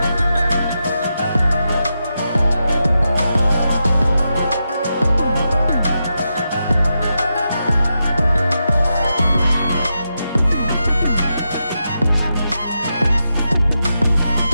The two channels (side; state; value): both; inverted; correlation -0.87